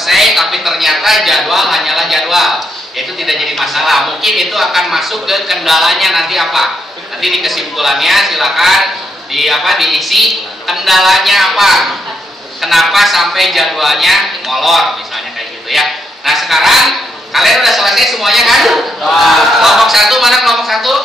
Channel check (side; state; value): both; normal; correlation 0.78